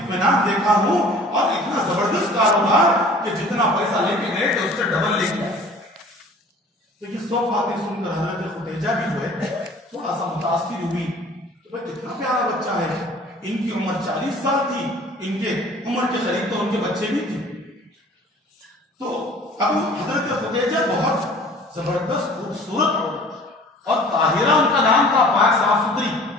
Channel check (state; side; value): normal; both; correlation 0.48